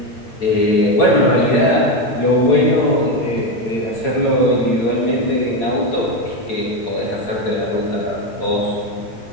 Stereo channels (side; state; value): right; late; 8.9 ms